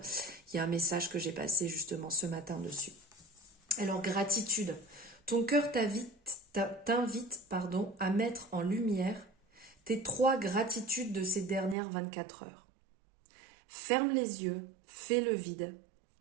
Il y a un message que j'ai passé justement ce matin dessus. Alors, gratitude. Ton cœur t'invite à mettre en lumière tes 3 gratitudes de ces dernières 24 heures. Ferme les yeux, fais le vide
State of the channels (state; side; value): drops out; left; at 11.8 s